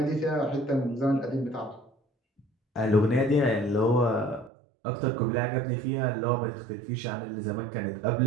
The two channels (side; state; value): left; drops out; at 4.5 s